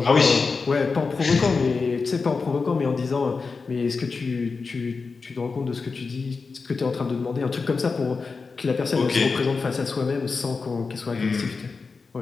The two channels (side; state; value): right; quieter; 4.6 dB